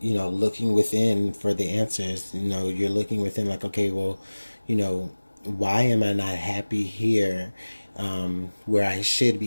looking within for the answers. You're looking within like, okay, well, why am I not happy here, where I should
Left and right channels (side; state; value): both; inverted; correlation -1.00